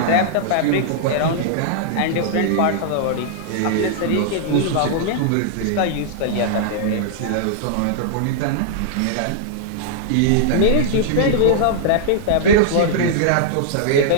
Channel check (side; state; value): both; different; correlation -0.01